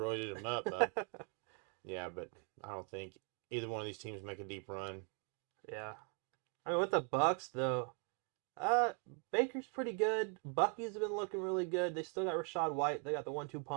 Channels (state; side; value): quieter; left; 39.7 dB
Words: them up, bud. Yeah, but I don't think either one of these teams make a deep run. Yeah. I mean, with the Bucks though, Baker's pretty good. Bucky's been looking really good. They still got Rashad White. They got the 1-2